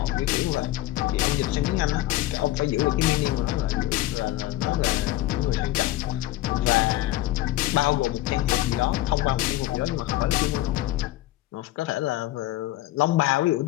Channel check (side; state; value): right; quieter; 15.7 dB